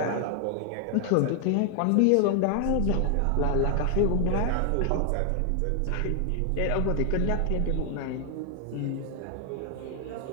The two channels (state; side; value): different; both; correlation 0.00